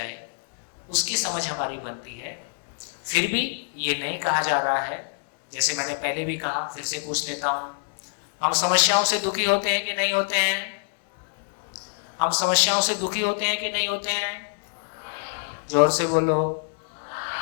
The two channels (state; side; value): silent; right; digital silence